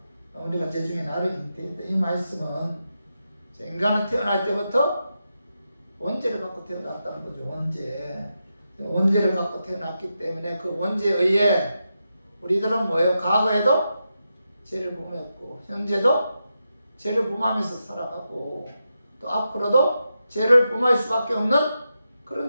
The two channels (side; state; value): both; inverted; correlation -0.87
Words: 어머니가 죄 중에 나를 잉태했다. 이 말씀은 인간은 태어날 때부터 원죄를 갖고 태어났다는 거죠. 원죄를 갖고 태어났기 때문에 그 원죄에 의해 우리들은 뭐예요? 과거에도 죄를 범했고 현재도 죄를 범하면서 살아가고 또 앞으로도 죄를 범할 수밖에 없는